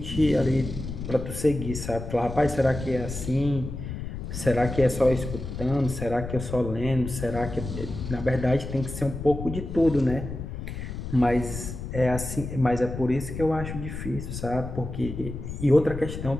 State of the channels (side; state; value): left; noise; rumble, 7 dB below the sound